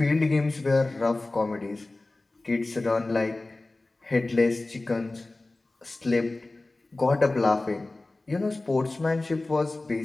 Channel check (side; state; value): right; quieter; 3.0 dB